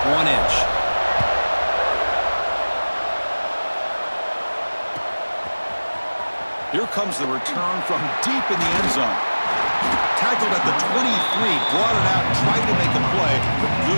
1 inch. Here comes the return from deep in the end zone. Tackled at the 23, brought it out, tried to make a play, but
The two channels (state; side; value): inverted; both; correlation -1.00